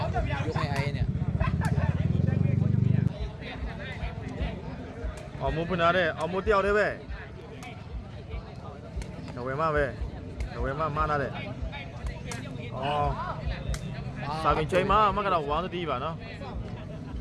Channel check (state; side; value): identical; both; correlation 1.00